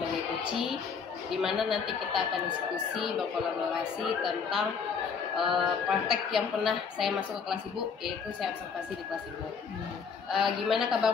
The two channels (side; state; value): right; quieter; 6.0 dB